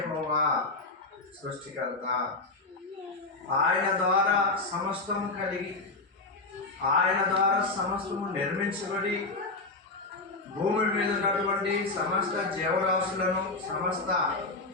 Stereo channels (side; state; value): right; quieter; 3.4 dB